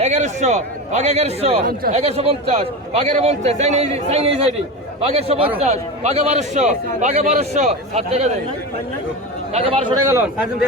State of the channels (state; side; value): normal; both; correlation 0.24